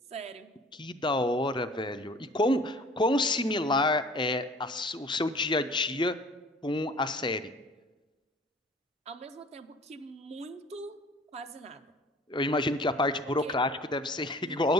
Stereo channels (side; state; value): both; normal; correlation 0.48